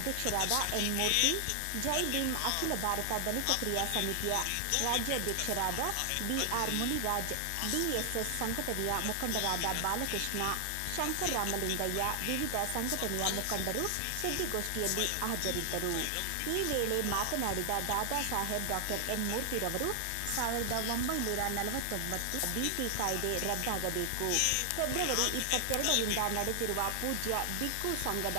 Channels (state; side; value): different; both; correlation 0.00